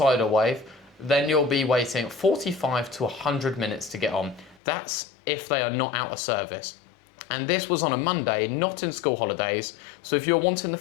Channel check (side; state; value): right; drops out; at 4.5 s